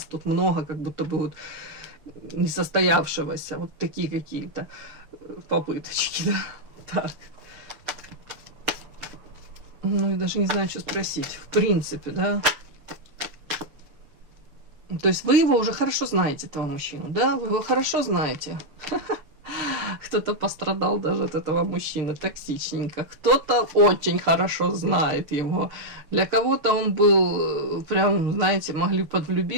Тут много как будто бы вот несостоявшегося, вот такие какие-то попыточки, да. Так. Ну, и даже не знаю, что спросить. В принципе, да. То есть вы его уже хорошо знаете, этого мужчину, да? Вы его хорошо знаете. Кто-то пострадал даже от этого мужчины токсичненько. Кто-то очень хорошо знает его. Для кого-то он был прям, знаете, могли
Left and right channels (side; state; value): left; late; 6.9 ms